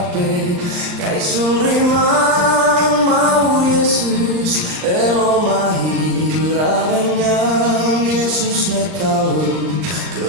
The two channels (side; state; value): left; late; 39 ms